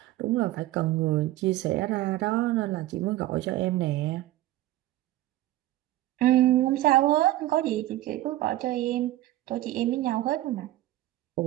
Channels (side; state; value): left; quieter; 15.6 dB